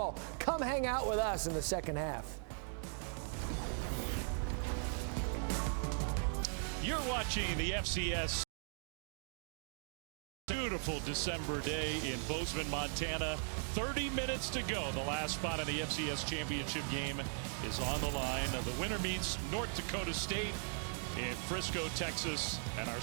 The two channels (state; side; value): silent; left; 52 dB below the other